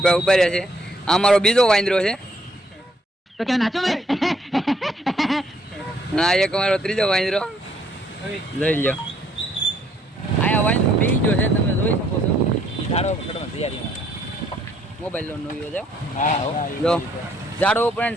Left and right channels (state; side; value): normal; both; correlation 0.66